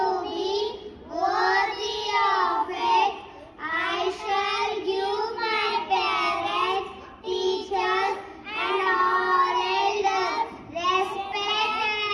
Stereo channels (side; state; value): both; identical; correlation 1.00